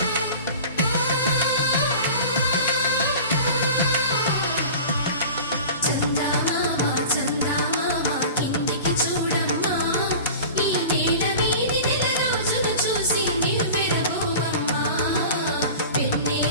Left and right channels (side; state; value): both; inverted; correlation -0.37